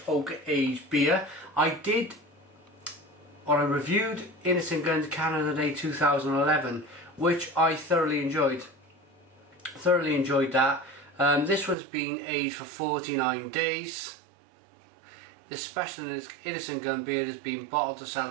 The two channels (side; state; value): left; drops out; at 11.8 s